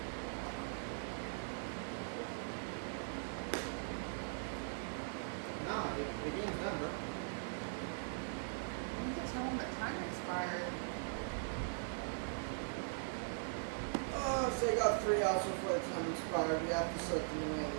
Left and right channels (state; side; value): silent; left; 50 dB below the other